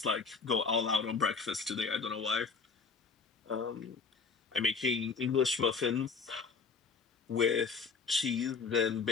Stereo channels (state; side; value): quieter; right; 5.0 dB